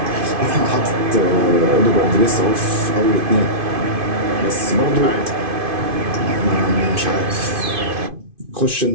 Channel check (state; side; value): late; left; 2.5 ms